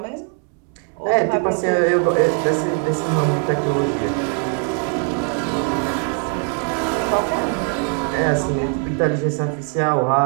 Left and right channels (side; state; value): left; quieter; 39.7 dB